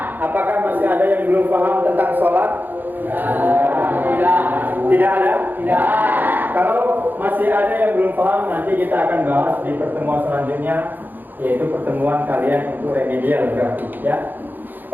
Apakah masih ada yang belum paham tentang sholat? Tidak ada? Tidak. Kalau masih ada yang belum paham, nanti kita akan bahas di pertemuan selanjutnya, yaitu pertemuan kalian untuk remedial berarti ya.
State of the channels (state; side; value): late; left; 0.088 ms